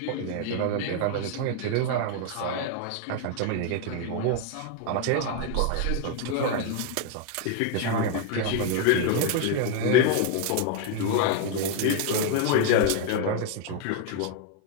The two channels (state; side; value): different; both; correlation 0.00